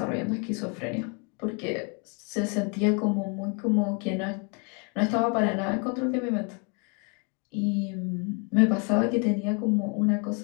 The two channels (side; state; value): right; quieter; 35.6 dB